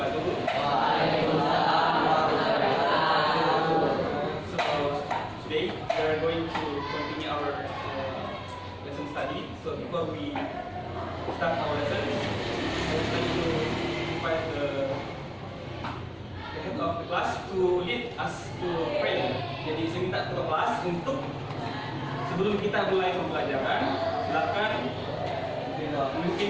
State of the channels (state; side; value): identical; both; correlation 1.00